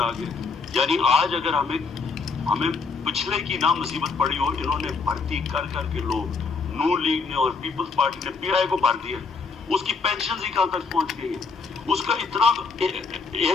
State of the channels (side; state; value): right; quieter; 4.7 dB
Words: آ گیا. یعنی آج اگر ہمیں پچھلے کی نہ مصیبت پڑی ہو، انہوں نے بھرتی کر کے لوگ، نون لیگ نے اور پیپلز پارٹی نے پی آئی کو بھر دیا. اس کی پینشن ہی کہاں تک پہنچ گئی ہے، اس کا اتنا